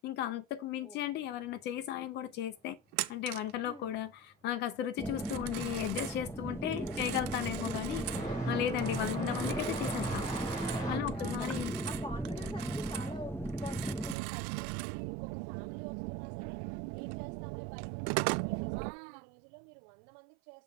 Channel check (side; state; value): left; drops out; at 14.2 s